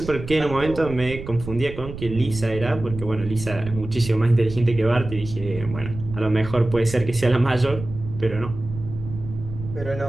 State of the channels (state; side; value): noise; right; rumble, 11 dB below the sound